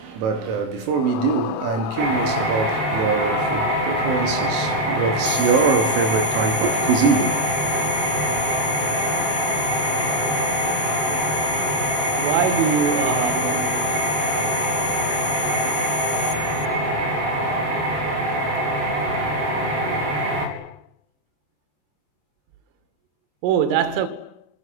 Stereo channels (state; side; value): late; left; 27 ms